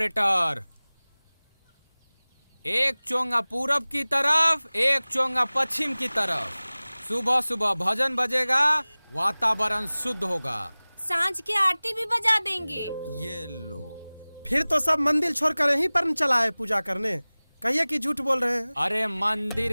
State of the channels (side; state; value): both; inverted; correlation -0.99